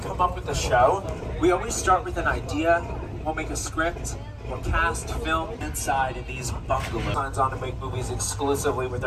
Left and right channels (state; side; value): identical; both; correlation 1.00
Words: up with a show, we always start with an idea. We'll make a script. We'll cast, film inside in these bungalows. Signs on to make movies exclusively with